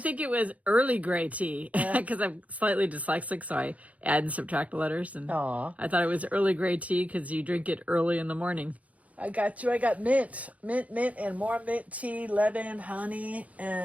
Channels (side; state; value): left; late; 0.069 ms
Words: think it was early gray tea because I'm slightly dyslexic, so I add and subtract letters. And I thought it was early gray tea because you drink it early in the morning. I got you. I got mint, and more mint tea, lemon, honey,